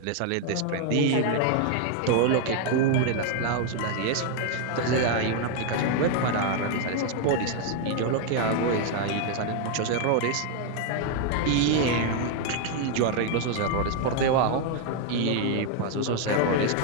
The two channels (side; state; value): both; different; correlation 0.00